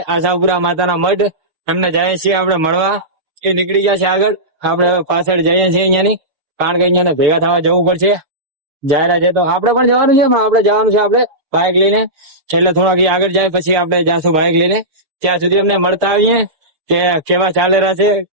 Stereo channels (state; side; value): late; left; 6.7 ms